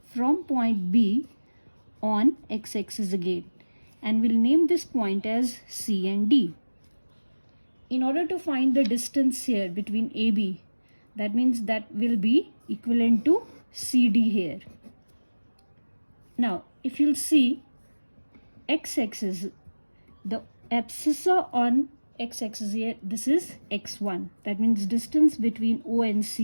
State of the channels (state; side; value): inverted; both; correlation -1.00